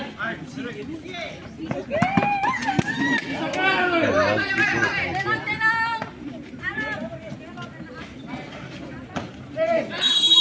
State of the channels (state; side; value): identical; both; correlation 1.00